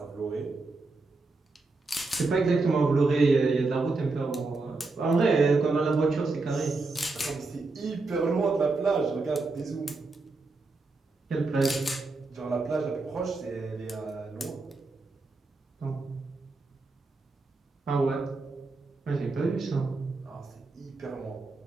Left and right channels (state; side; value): quieter; left; 3.6 dB